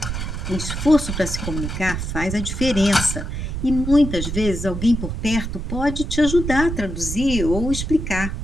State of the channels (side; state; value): right; noise; rumble, 4 dB below the sound